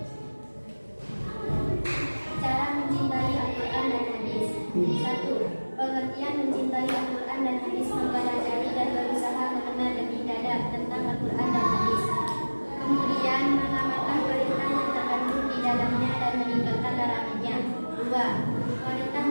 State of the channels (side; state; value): both; inverted; correlation -1.00